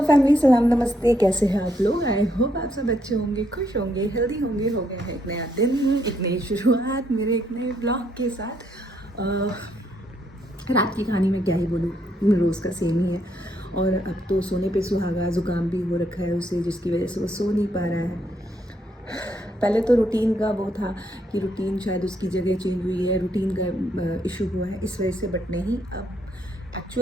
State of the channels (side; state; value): both; normal; correlation 0.74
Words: family, सलाम नमस्ते। कैसे हैं आप लोग? आई होप आप सब अच्छे होंगे, खुश होंगे, हेल्दी होंगे। हो गया है एक नया दिन, एक नई शुरुआत मेरे एक नए ब्लॉग के साथ। रात की कहानी में क्या ही बोलूँ, रोज़ का सेम ही है। और अब तो सोने पे सुहागा, ज़ुकाम भी हो रखा है उसे, जिसकी वजह से वो सो नहीं पा रहा है। पहले तो रूटीन का वो था कि रूटीन शायद उसकी जगह चेंज हुई है, रूटीन का इशू हुआ है इस वजह से, बट नहीं, अब